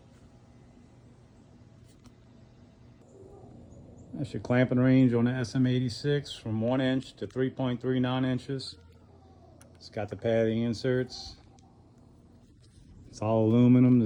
That's your clamping range on the SM-86 from 1 inch to 3.39 inches. It's got the padding inserts. It's all aluminum.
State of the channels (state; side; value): identical; both; correlation 1.00